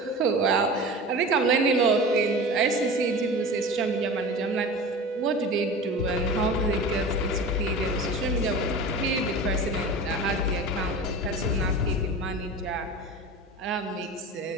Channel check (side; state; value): both; normal; correlation 0.33